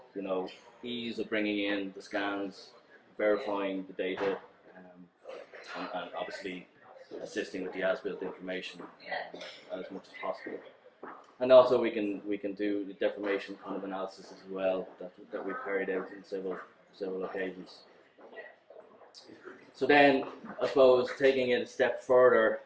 ease of bringing in the scans, verifying the data, and obviously assisting with the as-built information as much as possible. And also we can do the deformation kind of analysis as well that we've carried out in several occasions. So then, I suppose, taking it a step further,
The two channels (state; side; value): identical; both; correlation 1.00